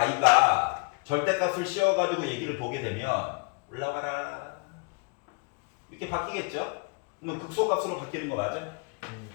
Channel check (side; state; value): right; quieter; 33.4 dB